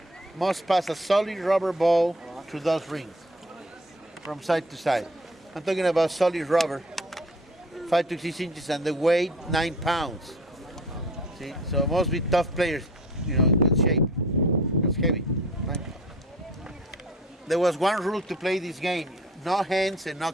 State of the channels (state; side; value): normal; both; correlation 0.47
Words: must pass a solid rubber ball through those rings from side to side. I'm talking about solid rubber, 5 to 6 inches, and the weight 9 pounds. See, so it must be tough players, in good shape. It's heavy. Right? There was one rule to play this game: no hands and no